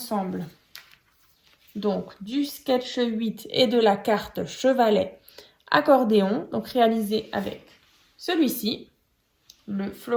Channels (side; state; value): both; identical; correlation 1.00